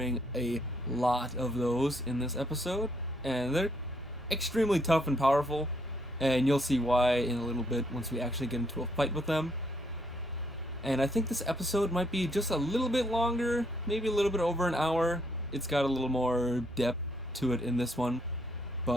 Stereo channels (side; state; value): both; normal; correlation 0.72